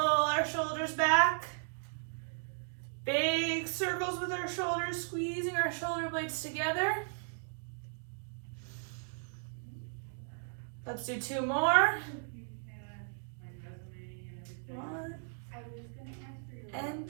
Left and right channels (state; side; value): silent; left; digital silence